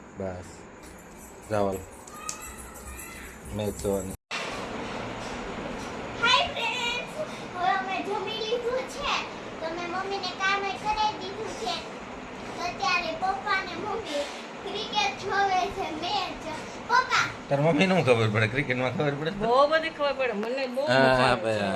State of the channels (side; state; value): both; identical; correlation 1.00